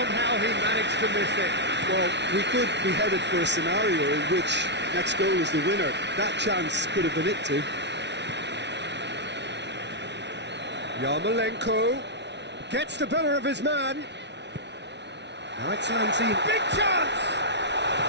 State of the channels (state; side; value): late; left; 0.50 ms